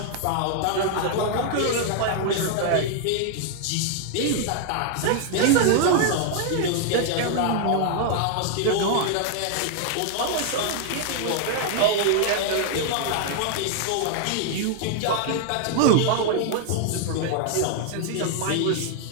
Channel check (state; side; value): different; both; correlation 0.00